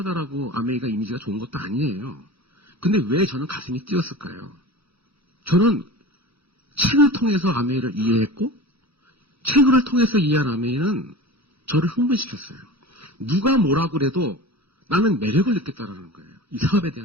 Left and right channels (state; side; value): late; left; 0.77 ms